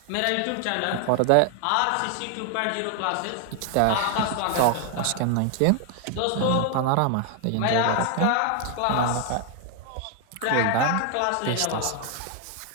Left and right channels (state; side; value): different; both; correlation 0.00